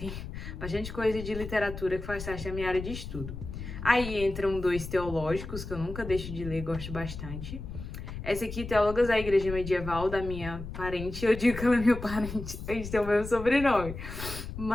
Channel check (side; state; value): left; noise; rumble, 9 dB below the sound